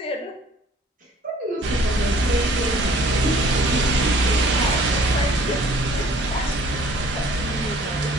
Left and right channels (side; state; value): both; normal; correlation 0.55